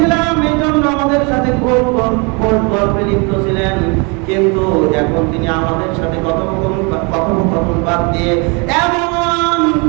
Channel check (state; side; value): quieter; left; 31.5 dB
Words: এই জন্য আমাদের সাথে খুব গল্পে লিপ্ত ছিলেন, কিন্তু এখন তিনি আমাদের সাথে কথোপকথন বাদ দিয়ে এমন